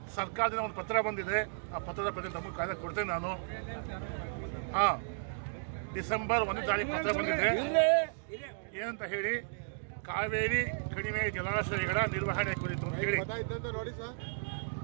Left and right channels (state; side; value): silent; left; digital silence